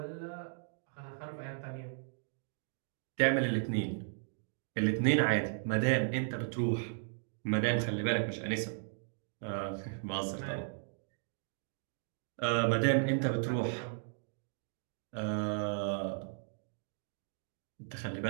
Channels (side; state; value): left; silent; digital silence